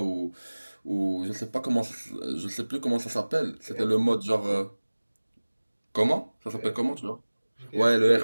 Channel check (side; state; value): both; inverted; correlation -1.00